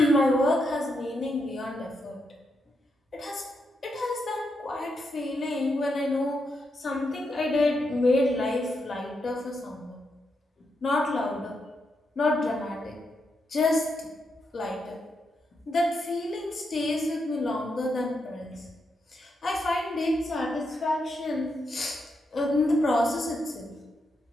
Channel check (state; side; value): normal; both; correlation 0.82